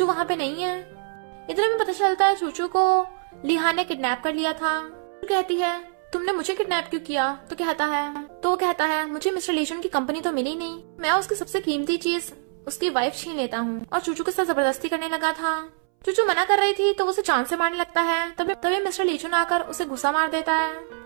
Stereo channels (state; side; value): silent; left; 62 dB below the other